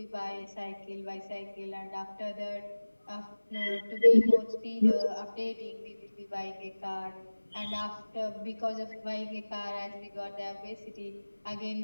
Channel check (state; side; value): inverted; both; correlation -1.00